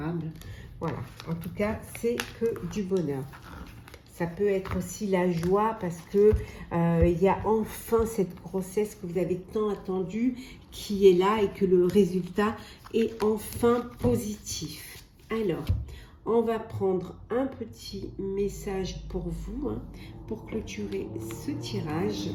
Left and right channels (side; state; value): both; identical; correlation 1.00